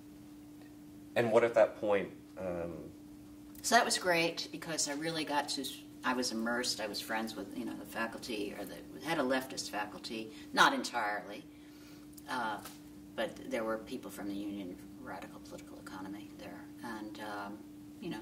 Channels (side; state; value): both; identical; correlation 1.00